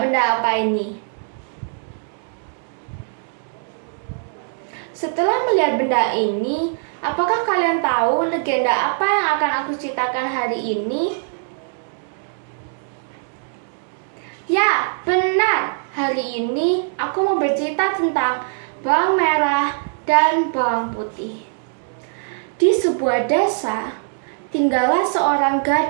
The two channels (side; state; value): left; silent; 65 dB below the other